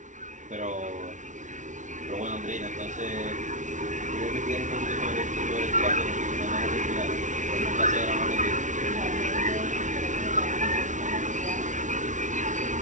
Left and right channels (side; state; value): left; late; 0.36 ms